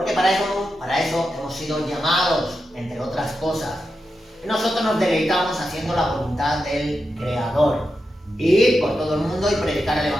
para eso hemos sido llamados, entre otras cosas. Y nosotros nos deleitamos haciendo la voluntad del Creador. Ir por todo el mundo y predicar el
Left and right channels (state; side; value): normal; both; correlation 0.88